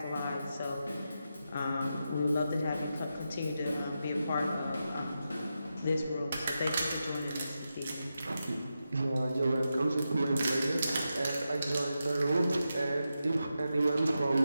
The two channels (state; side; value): inverted; both; correlation -0.88